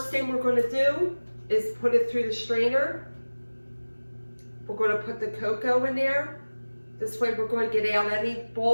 thing we're going to do is put it through the strainer. We're going to put the cocoa in there. This way we're going to get out any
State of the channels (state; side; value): inverted; both; correlation -1.00